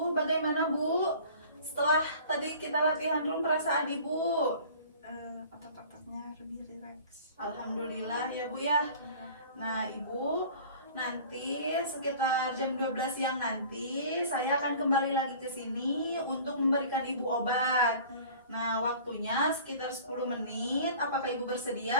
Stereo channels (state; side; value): inverted; both; correlation -0.45